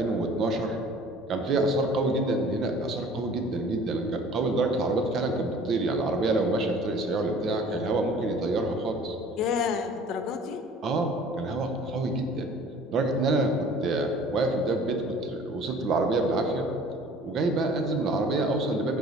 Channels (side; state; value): both; normal; correlation 0.49